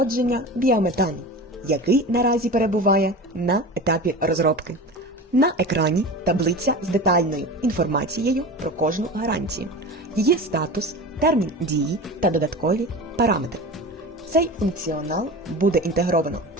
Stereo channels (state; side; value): normal; both; correlation 0.32